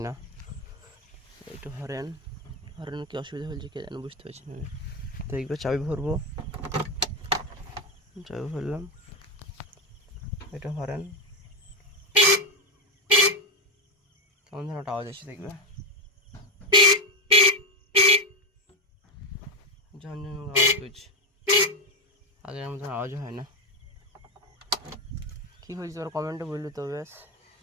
না। একটু হরেন কি অসুবিধা হয়েছে কে জানে, বুঝতে পারছি না। দেখবে চাবি ভরবো, চাবি ভরলাম, এটা হরেন কেমন যেন একটা আওয়াজ আছে, দেখবে ঝনঝন আওয়াজ করছে। আগের মতন আওয়াজ হয় না। কী হয়েছে তোর কমেন্টে বললি তো, বেশ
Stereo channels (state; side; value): normal; both; correlation 0.11